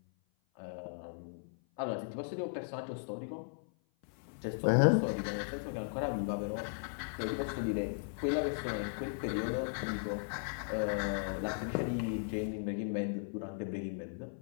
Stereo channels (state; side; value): silent; right; 53 dB below the other